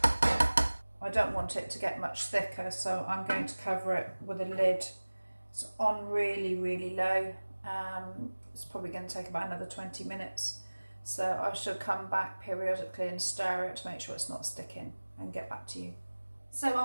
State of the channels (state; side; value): inverted; both; correlation -1.00